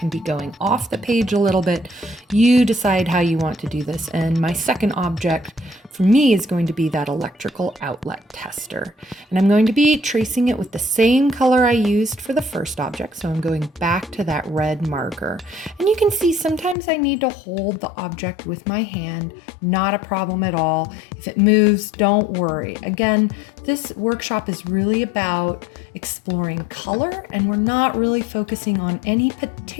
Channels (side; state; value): right; drops out; at 16.8 s